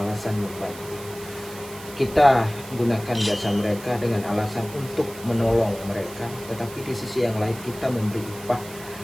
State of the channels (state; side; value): noise; right; hiss, 16 dB below the sound